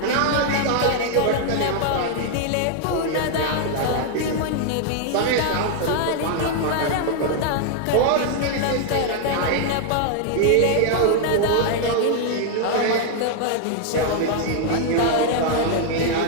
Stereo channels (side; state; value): both; different; correlation 0.00